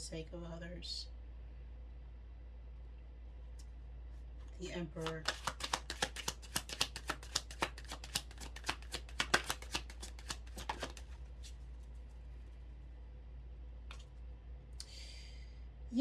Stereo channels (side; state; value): both; identical; correlation 1.00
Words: of others. The Emperor.